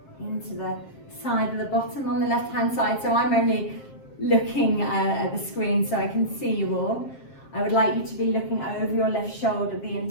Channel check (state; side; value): late; right; 7.5 ms